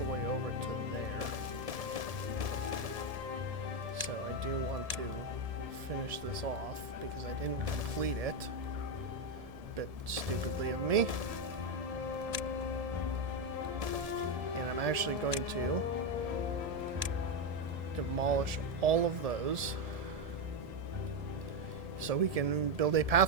way over to there. So I do want to finish this off because I didn't complete it. Bit stupidly of me. And I'm actually going to demolish all of those so we can build a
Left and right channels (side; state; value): left; late; 1.7 ms